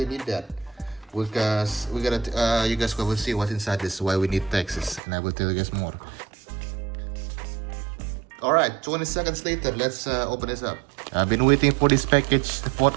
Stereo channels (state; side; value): drops out; left; at 5.0 s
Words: need that because we gotta you guys will see what's inside this, why we need taxes, and I will tell you guys more. Alright, 20 seconds later, let's open this up. I've been waiting for this package for